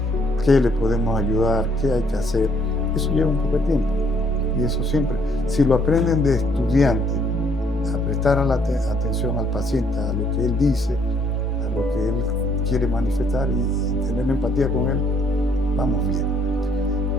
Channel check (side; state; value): both; normal; correlation 0.66